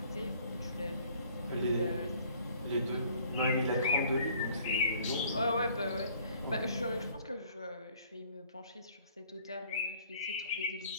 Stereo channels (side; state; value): both; inverted; correlation -0.57